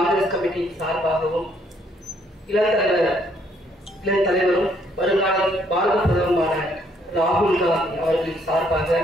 கமிட்டியின் சார்பாகவும் இளம் தலைவரும் வருங்கால பாரத பிரதமரான ராகுல் காந்தி அவர்களின் சார்பாக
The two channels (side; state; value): both; normal; correlation 0.68